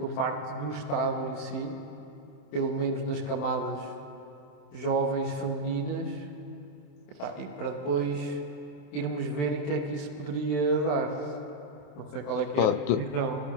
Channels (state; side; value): late; right; 27 ms